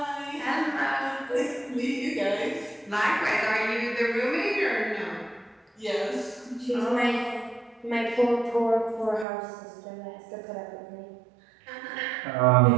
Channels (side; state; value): left; drops out; at 9.2 s